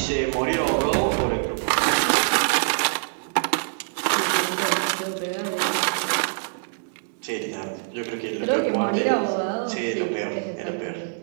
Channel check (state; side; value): silent; left; digital silence